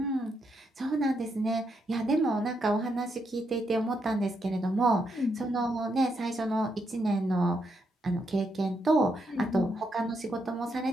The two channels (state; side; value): normal; both; correlation 0.79